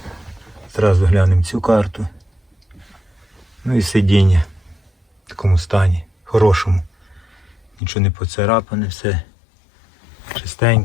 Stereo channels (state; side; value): drops out; right; at 7.8 s